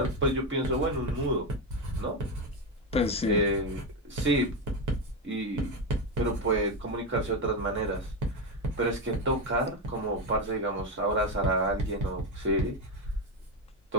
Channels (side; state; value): both; normal; correlation 0.11